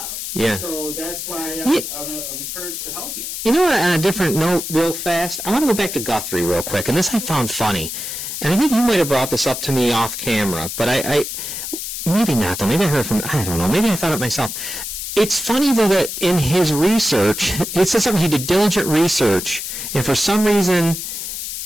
Yeah. So that's why I'm encouraged to help you. On a different note, real fast, I want to go back to Guthrie real quick, and this I found funny. And I think you might have brought this up to me off camera, but I maybe not, though. Maybe I heard I don't know. Maybe I thought it myself. It's funny, though, that in his research, it says something, he did diligent research, and for some reason,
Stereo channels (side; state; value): left; noise; hiss, 6 dB below the sound